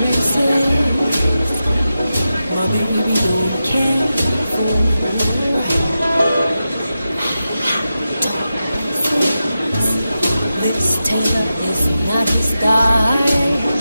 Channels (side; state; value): both; inverted; correlation -0.91